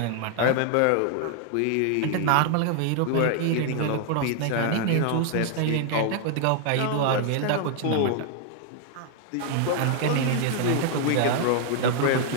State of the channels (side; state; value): both; different; correlation 0.00